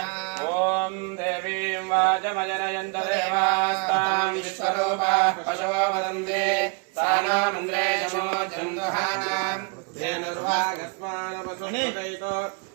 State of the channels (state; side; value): quieter; left; 34.1 dB